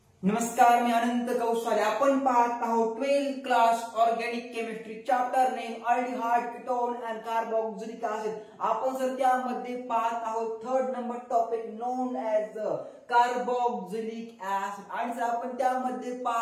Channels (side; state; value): both; identical; correlation 1.00